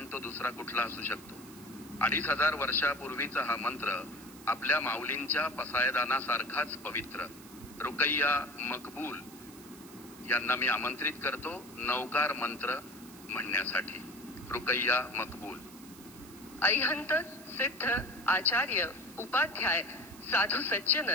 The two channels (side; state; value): right; noise; hiss, 19 dB below the sound